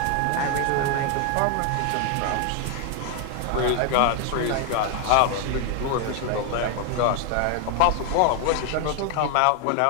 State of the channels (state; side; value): different; both; correlation 0.00